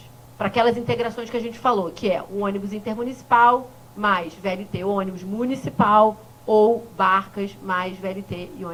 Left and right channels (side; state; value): both; identical; correlation 1.00